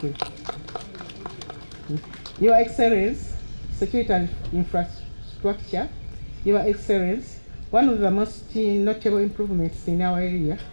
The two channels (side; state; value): both; inverted; correlation -1.00